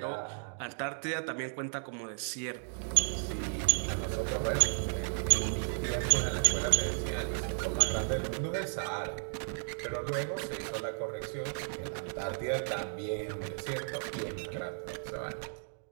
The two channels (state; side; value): silent; left; digital silence